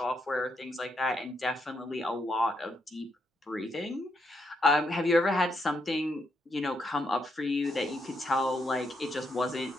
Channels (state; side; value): normal; both; correlation 0.79